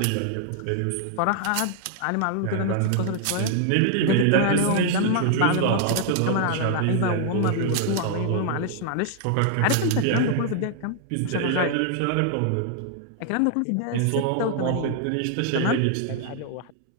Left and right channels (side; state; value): both; different; correlation 0.00